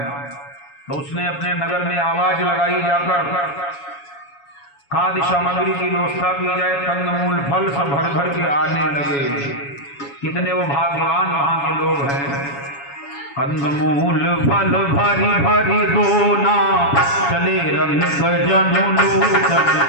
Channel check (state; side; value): late; right; 7.1 ms